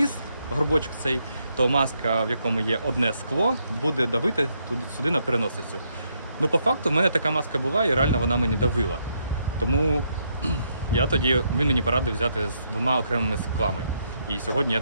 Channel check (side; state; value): both; inverted; correlation -0.76